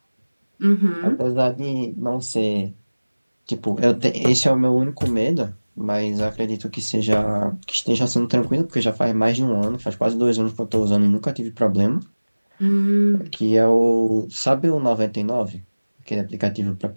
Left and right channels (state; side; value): inverted; both; correlation -1.00